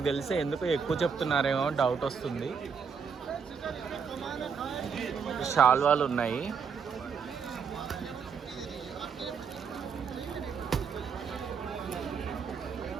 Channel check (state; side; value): quieter; left; 6.2 dB